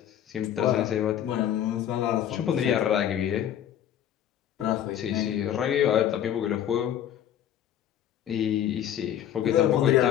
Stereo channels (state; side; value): quieter; right; 10.5 dB